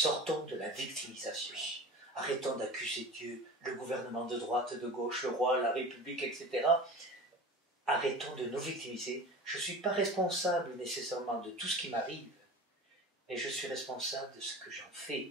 de la victimisation. Arrêtons d'accuser Dieu, le gouvernement de droite, de gauche, le roi, la République, etc. Arrêtons de nous victimiser. Je ne suis pas responsable nécessairement de tout ce qui m'arrive, mais je suis responsable de ce que j'en fais.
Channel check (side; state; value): both; normal; correlation 0.36